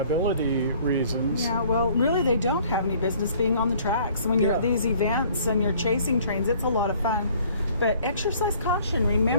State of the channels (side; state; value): both; inverted; correlation -0.56